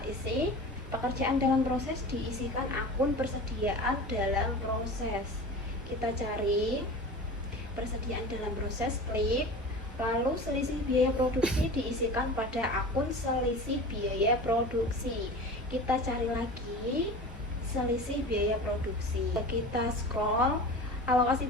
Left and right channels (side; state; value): both; normal; correlation 0.34